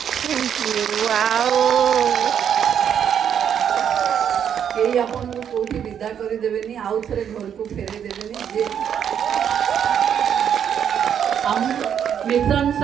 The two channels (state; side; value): quieter; left; 8.6 dB